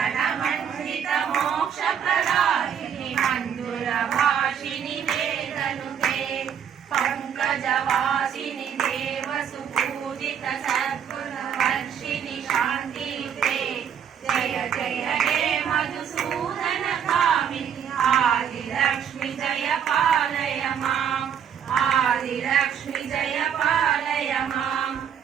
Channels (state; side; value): quieter; left; 8.3 dB